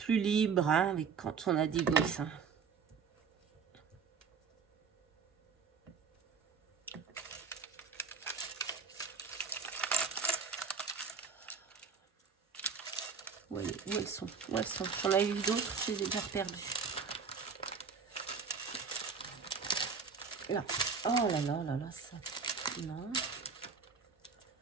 libre hein, avec quand on a des gosses. Hein. Où elles sont? Où elles sont? J'en ai eu d'autres, je les ai déjà perdues. Là. Oh là là là là, ça. Non.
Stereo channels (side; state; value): left; quieter; 5.6 dB